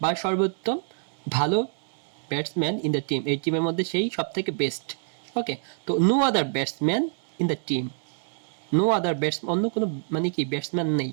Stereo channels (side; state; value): left; silent; 61 dB below the other